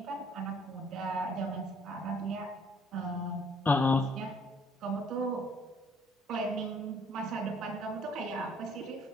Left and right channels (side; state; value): both; normal; correlation 0.61